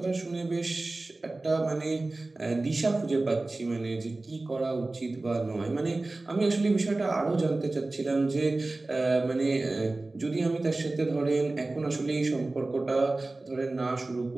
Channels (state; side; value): quieter; left; 3.1 dB